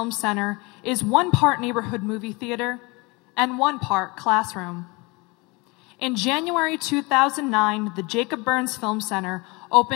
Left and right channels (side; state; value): right; quieter; 26.3 dB